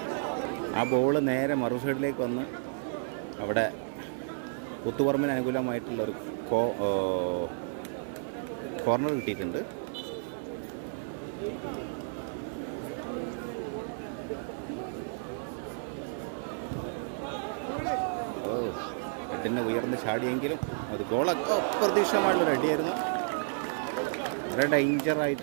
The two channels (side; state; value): left; silent; 56 dB below the other